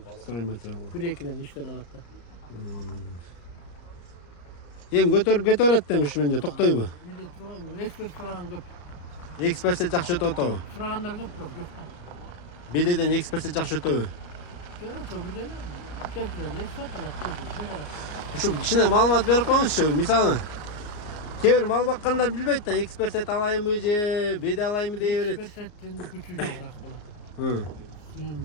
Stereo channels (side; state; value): right; late; 34 ms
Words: Строй материал. 1-2ден иштен алат да. Эми көтөрүп кете берет да ушу менен токтойбу? Биде турган эксперт сураган көп. Экспертсе жакшы өтүп атабы? Сурагандар көп бирок жок да. Бедеден экспертсе жакшы өтөбү? Жок, бирден келтирет эксперт алат, келтирет. Ушу кичине маалымат берип коюңузчу. Мисалы кээ бир мал баккандар билбейт да, экспертсет алайынбы же беде алайынбы дей берет. Эксперттин күчү жогураак болот.